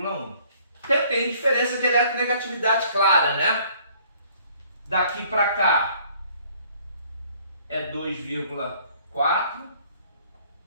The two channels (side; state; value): both; inverted; correlation -0.59